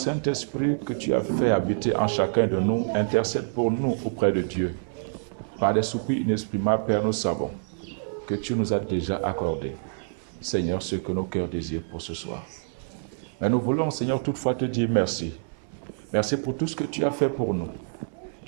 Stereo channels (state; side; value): silent; left; 60 dB below the other